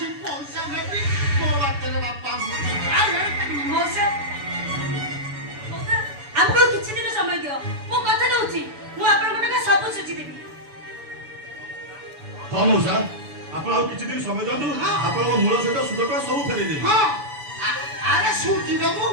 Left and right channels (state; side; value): late; left; 7.0 ms